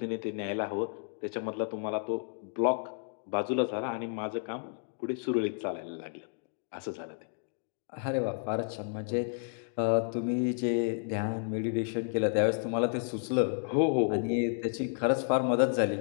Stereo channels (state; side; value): silent; right; digital silence